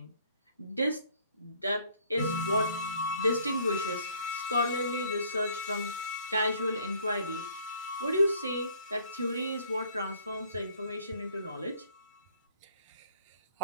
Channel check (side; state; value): both; inverted; correlation -0.59